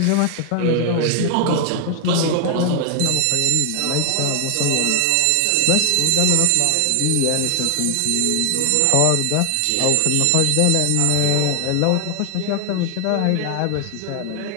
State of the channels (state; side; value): different; both; correlation 0.00